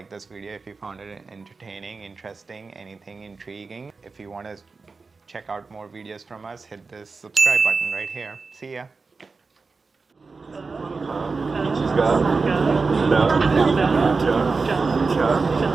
this video if you found it entertaining, interesting, anything intriguing. If you want to check out more videos from us, hit this subscribe button right here. See ya.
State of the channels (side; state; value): left; quieter; 4.3 dB